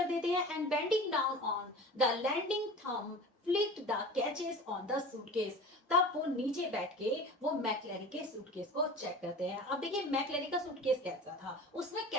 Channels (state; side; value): normal; both; correlation 0.36